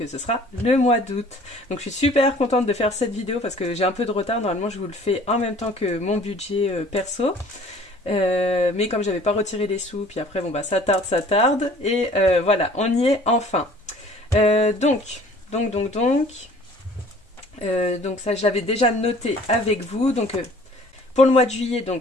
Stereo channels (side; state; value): both; normal; correlation 0.51